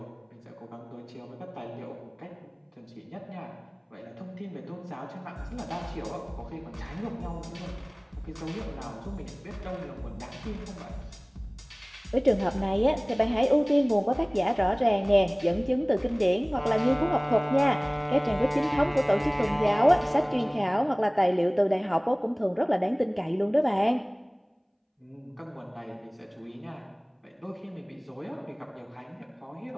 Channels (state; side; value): identical; both; correlation 1.00